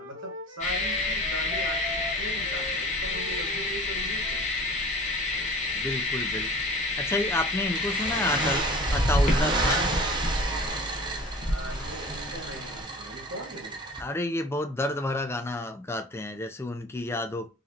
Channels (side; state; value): both; normal; correlation 0.42